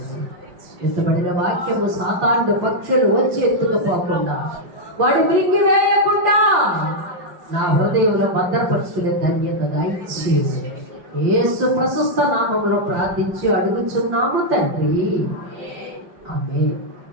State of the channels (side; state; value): left; late; 5.9 ms